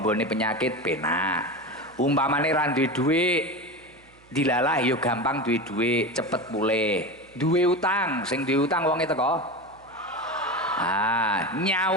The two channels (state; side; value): noise; right; hum, 28 dB below the sound